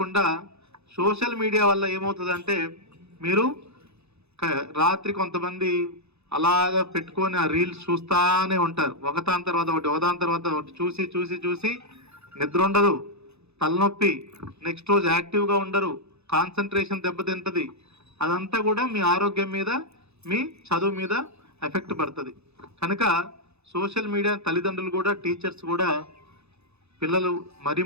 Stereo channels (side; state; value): left; late; 0.79 ms